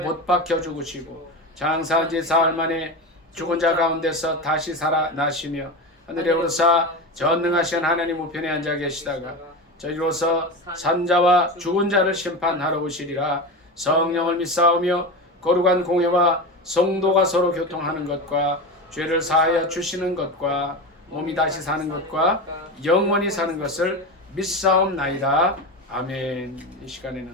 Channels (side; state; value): both; normal; correlation 0.23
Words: 박혀 죽으시고 장사한 지 사흘 만에 죽은 자 가운데서 다시 살아나시며 하늘에 오르사 전능하신 하나님 우편에 앉아 계시다가 저희로서 산자와 죽은 자를 심판하러 오시리라. 성령을 믿사오며 거룩한 공회와 성도가 서로 교통하는 것과 죄를 사하여 주시는 것과 몸이 다시 사는 것과 영원히 사는 것을 믿사옵나이다. 아멘. 이